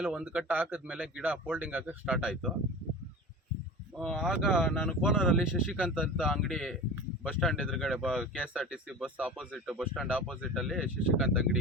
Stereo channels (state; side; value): normal; both; correlation 0.33